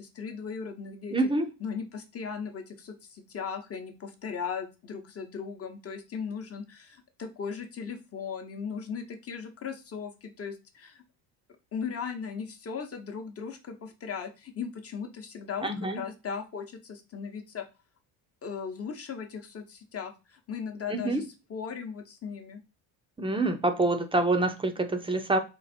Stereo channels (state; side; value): normal; both; correlation 0.37